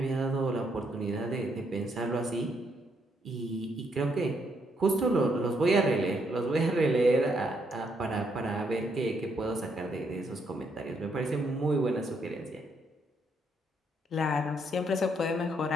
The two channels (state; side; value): normal; both; correlation 0.74